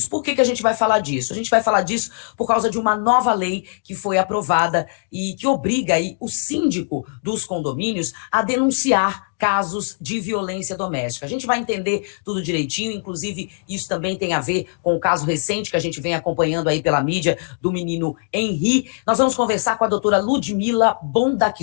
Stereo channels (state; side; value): silent; right; digital silence